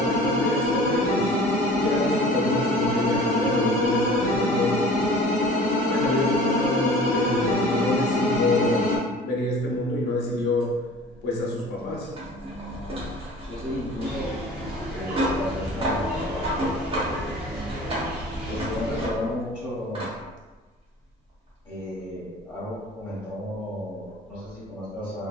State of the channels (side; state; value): both; normal; correlation 0.44